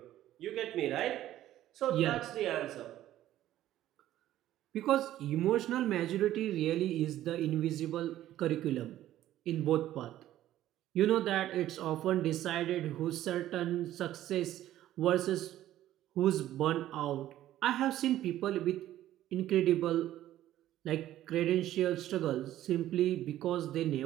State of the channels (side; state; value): left; quieter; 13.3 dB